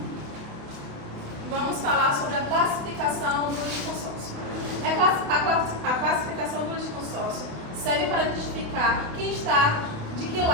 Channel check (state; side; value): late; left; 28 ms